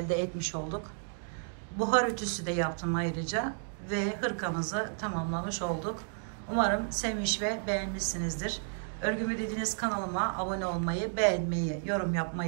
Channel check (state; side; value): silent; left; digital silence